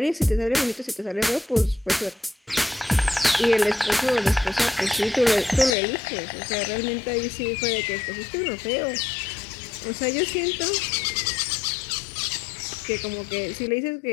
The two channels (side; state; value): right; drops out; at 5.8 s